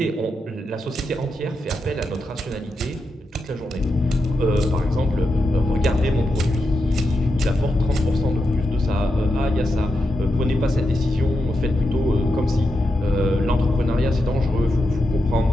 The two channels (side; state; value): both; normal; correlation 0.86